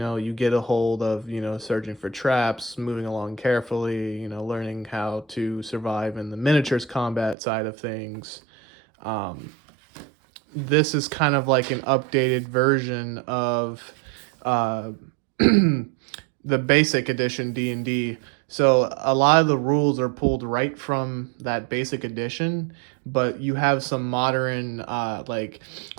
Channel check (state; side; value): drops out; left; at 7.4 s